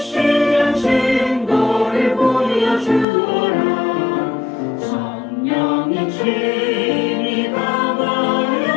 증거를 보여주어라. 성령이 친히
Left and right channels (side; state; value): right; drops out; at 3.1 s